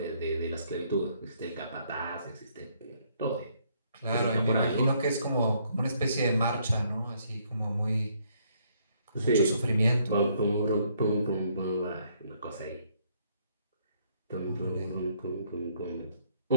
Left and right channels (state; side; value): inverted; both; correlation -0.69